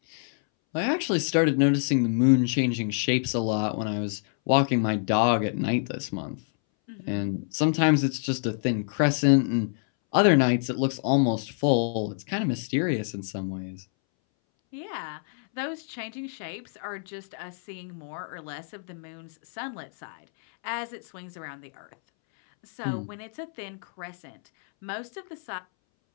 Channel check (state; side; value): silent; right; 60 dB below the other